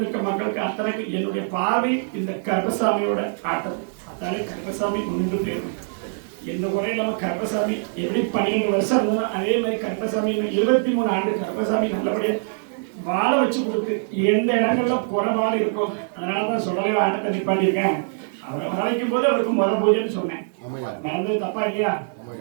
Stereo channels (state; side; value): silent; left; digital silence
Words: நிற்க மக்களுக்கு அத்தனைக்கு என்னுடைய பார்வை இந்த கருப்பசாமியோட ஆட்டம். அத்தாலே கருப்பசாமி முன்னின்று போயிடும். எந்த குறை இல்லாம கருப்பசாமி எப்படி 12 வருஷம் இருந்தோம் அதே மாதிரி கருப்பசாமி 23 ஆண்டு கருப்பசாமி நல்லபடியா வாழ வச்சு கொடுத்து எந்த இடங்கள்ல குறைபாடு இருக்கும் அதனாலதான் சொல்லவே ஆட்டத்தை நிப்பாட்டியிருக்கேன். அவரை வர வைக்கும் போது அவருக்கு முத பூஜைன்னு சொன்னேன். நடந்தது தப்பா இல்லையா?